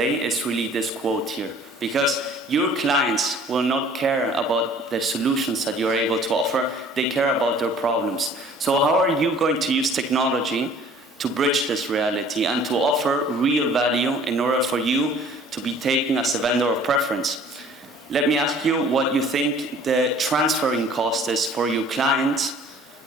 it's really this quote here. Because your clients will not care about the solutions that you're able to offer, they care about their problems. So how are you going to use technology to bridge this reality and to offer real value in order for you to be taken as a vendor of preference? Let me ask you what you think the transferring cost is for your client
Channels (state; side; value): normal; both; correlation 0.52